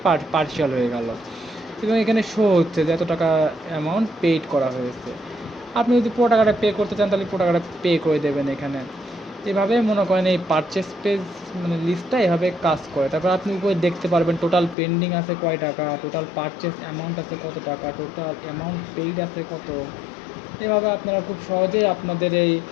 পার্শিয়াল হয়ে গেল, এবং এখানে শো হচ্ছে যে এত টাকা অ্যামাউন্ট পেইড করা হয়েছে। আপনি যদি পুরো টাকাটা পে করতে চান তাহলে পুরো টাকাটা পে করে দেবেন এখানে। এভাবে মনে করেন এই পারচেস পেজ মানে লিস্টটা এভাবে কাজ করে। তারপর আপনি উপরে দেখতে পারবেন টোটাল পেন্ডিং আছে কয় টাকা, টোটাল পারচেস অ্যামাউন্ট আছে কত টাকা, টোটাল অ্যামাউন্ট পেইড আছে কত। এভাবে আপনারা খুব সহজেই আপনাদের এই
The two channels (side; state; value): right; drops out; at 14.8 s